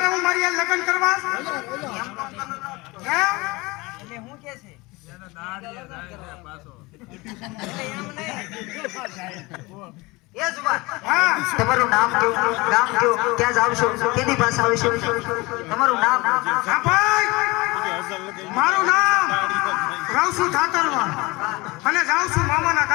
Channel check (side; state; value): right; quieter; 23.4 dB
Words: હું મારી યાર લગ્ન કરવા તમારું નામ કયો, ગામ કયો, ક્યાં જાવ છો, કેની પાસે આવશો, તમારું નામ? હા ભાઈ, મારું નામ રાવસુ ઠાકરવા અને જાઉં છું મામાના